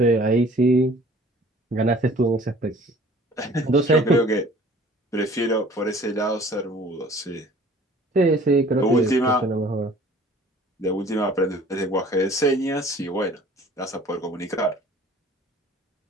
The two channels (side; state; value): both; normal; correlation 0.51